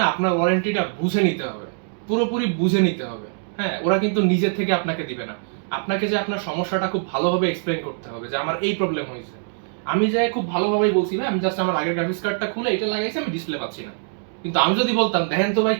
আপনার ওয়ারেন্টিটা বুঝে নিতে হবে। পুরোপুরি বুঝে নিতে হবে। হ্যাঁ, ওরা কিন্তু নিজে থেকে আপনাকে দিবে না। আপনাকে যে আপনার সমস্যাটা খুব ভালোভাবে এক্সপ্লেইন করতে হবে যে আমার এই প্রবলেম হয়েছে। আমি যে খুব ভালোভাবেই বলছি ভাই আমি জাস্ট আমার আগের গ্রাফিক্স কার্ডটা খুলে এটা লাগাইছি, আমি ডিসপ্লে পাচ্ছি না। কিন্তু আমি যদি বলতাম দেখেন তো ভাই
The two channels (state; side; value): silent; left; digital silence